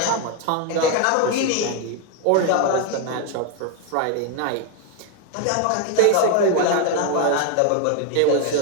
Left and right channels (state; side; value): different; both; correlation 0.01